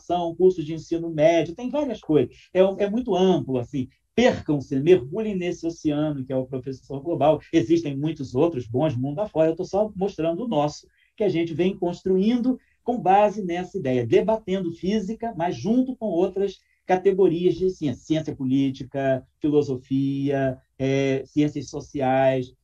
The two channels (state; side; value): identical; both; correlation 1.00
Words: cursos de ensino médio, tem várias coisas. É muito amplo, assim. Percam-se, mergulhem nesse oceano que é o Professor Global. Existem muitos outros bons mundo afora, eu estou só mostrando o nosso, que a gente vem construindo com base nessa ideia, debatendo física, mas junto com outras categorias de ciência, ciência política, filosofia, ciências sociais,